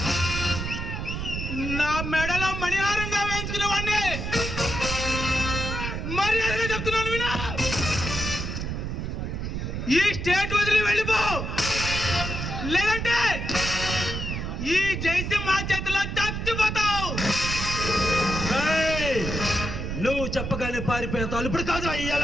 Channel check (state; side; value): noise; right; rumble, 4 dB below the sound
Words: నా మెడలో మణిహారంగా వేయించుకునే వాడిని మర్యాదగా చెప్తున్నాను వినా. ఈ స్టేట్ వదిలి వెళ్ళిపో, లేదంటే ఈ జయసింహ చేతిలో చచ్చిపోతావు. నువ్వు చెప్పగానే పారిపోతావు. ఇప్పుడు కాదు ఈ